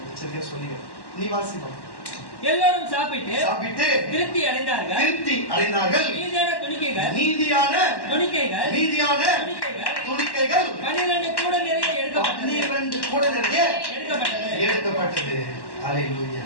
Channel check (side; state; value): right; late; 1.1 ms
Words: சரியா சொல்லுங்க. நீ வாசிப்போம். எல்லாரும் சாப்பிட்டு திருப்தி அடைந்தார்கள். நீதியான துணிக்கைகள் 12 கூட நிறைய எடுக்கப்பட்டது. அல்லேலூயா.